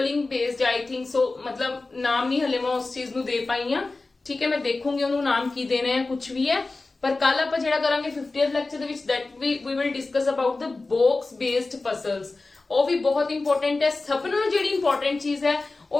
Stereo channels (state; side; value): quieter; right; 3.5 dB